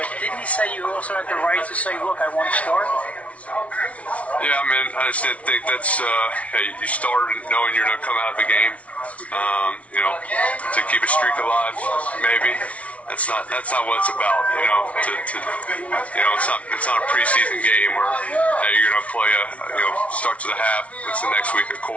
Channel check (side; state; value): right; late; 0.065 ms